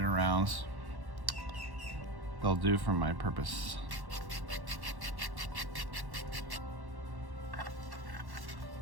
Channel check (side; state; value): left; late; 1.1 ms